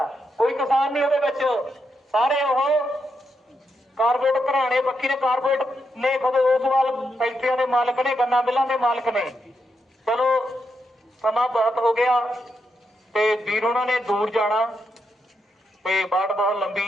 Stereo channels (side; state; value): both; normal; correlation 0.83